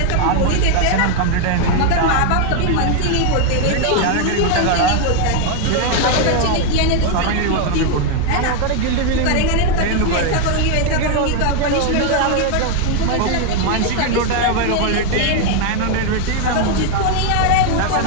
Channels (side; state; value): both; different; correlation 0.01